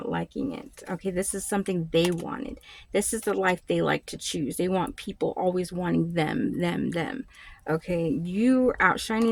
liking it. Okay, this is something they wanted. This is the life they like to choose. They want people always wanting them. Okay, you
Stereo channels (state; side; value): identical; both; correlation 1.00